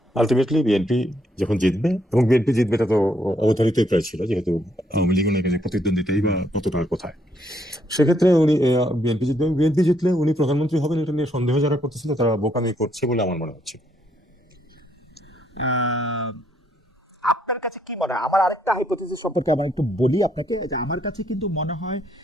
আলটিমেটলি বিএনপি যখন জিতবে, এবং বিএনপি জিতবে এটা তো অবধারিতই প্রায় ছিল, যেহেতু আওয়ামী লীগ ওনার কাছে প্রতিদ্বন্দ্বিতাই বা কতটা কোথায়। সেক্ষেত্রে উনি বিএনপি জিতবে, বিএনপি জিতলে উনি প্রধানমন্ত্রী হবেন, এটা নিয়ে সন্দেহ যারা করতেছিল তারা বোকামি করছে বলে আমার মনে হচ্ছে। আপনার কাছে কি মনে হয়? আমার আরেকটা হাইপোথিসিস সম্পর্কে আমার একটু বলি আপনাকে, যে আমার কাছে কিন্তু মনে হয়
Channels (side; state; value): both; normal; correlation 0.72